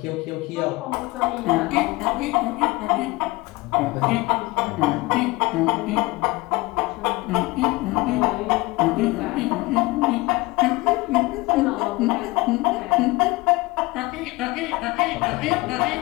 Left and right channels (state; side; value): quieter; right; 22.2 dB